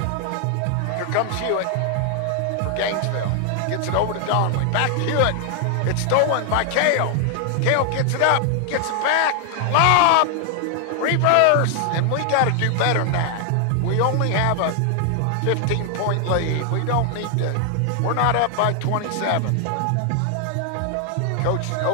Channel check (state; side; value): different; both; correlation 0.00